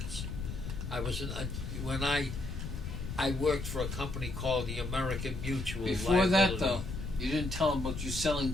When I worked for a company called the American Mutual. Before that, Liability. though, you didn't tell them about you selling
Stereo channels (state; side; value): noise; left; rumble, 6 dB below the sound